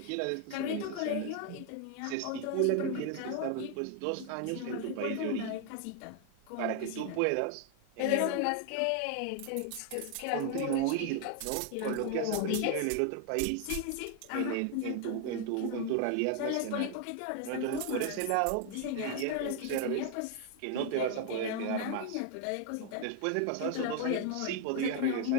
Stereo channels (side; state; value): both; different; correlation 0.00